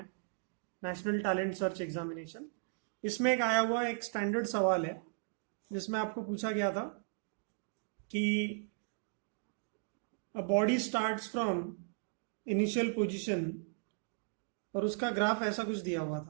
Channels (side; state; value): left; silent; digital silence